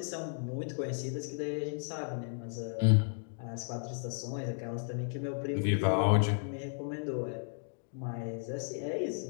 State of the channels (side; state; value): right; silent; digital silence